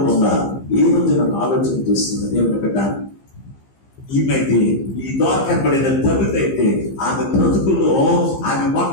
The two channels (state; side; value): late; right; 15 ms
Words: ఏ రోజు నన్ను ఆలోచన చేస్తుంది దేవుని బిడ్డ. ఈమెయితే ఈ ద్వారా కనబడిన తల్లిదైతే ఆమె బ్రతుకుల్లో ఆమె